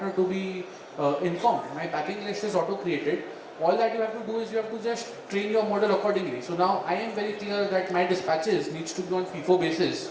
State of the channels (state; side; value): identical; both; correlation 1.00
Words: to be informed. My packing list is auto-created. All that you have to do is you have to just train your model accordingly. So now I am very clear that my dispatches needs to be on FIFO